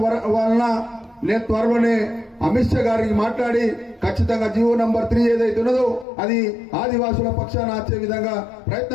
వలన నేను త్వరలోనే అమిత్ షా గారికి మాట్లాడి ఖచ్చితంగా జీవో నంబర్ 3 ఏదైతే ఉన్నదో అది ఆదివాసుల పక్షాన వచ్చే విధంగా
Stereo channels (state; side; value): drops out; right; at 6.1 s